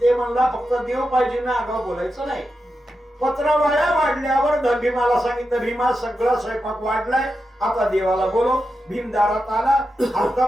म्हणला फक्त देव पाहिजे ना आगाव बोलायचं नाही. पत्रवाळ्या वाढल्यावर भीमाला सांगितलं, भीमा सगळा स्वयंपाक वाढलाय आता देवाला बोलव. भीम दारात आला.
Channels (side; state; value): both; normal; correlation 0.89